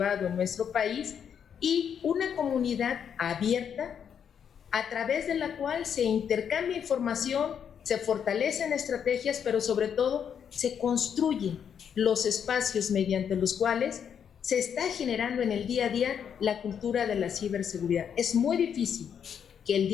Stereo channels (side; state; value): right; quieter; 8.0 dB